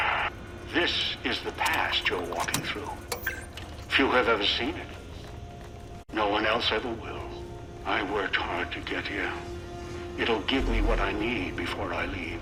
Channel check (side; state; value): both; identical; correlation 1.00